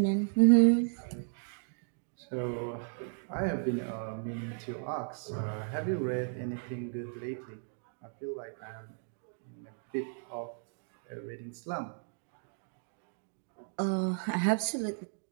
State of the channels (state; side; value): silent; left; 55 dB below the other